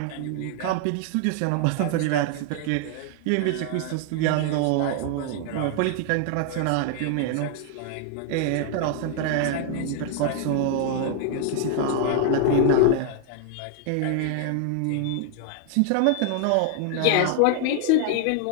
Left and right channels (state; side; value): different; both; correlation 0.00